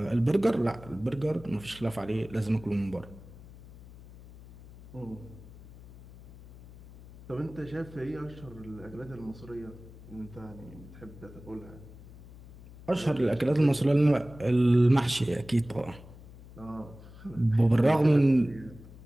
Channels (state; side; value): noise; left; hum, 19 dB below the sound